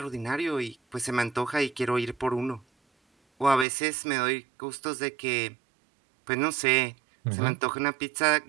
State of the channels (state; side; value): drops out; left; at 3.7 s